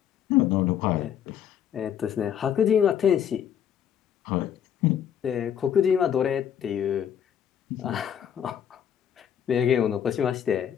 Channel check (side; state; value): right; quieter; 9.2 dB